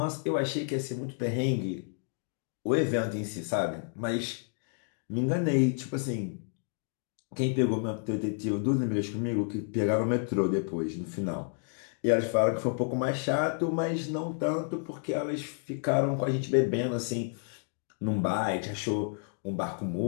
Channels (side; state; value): right; silent; 57 dB below the other